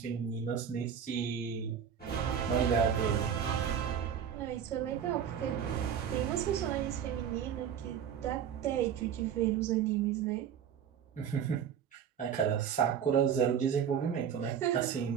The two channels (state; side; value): quieter; left; 8.4 dB